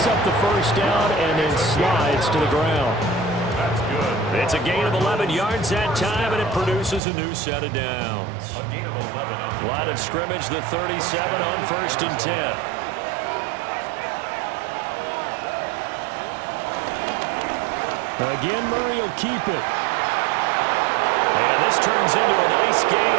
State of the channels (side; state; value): left; drops out; at 7.0 s